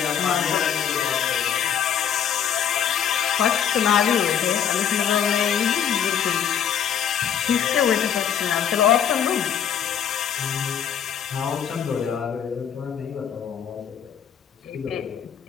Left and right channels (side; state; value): right; quieter; 8.6 dB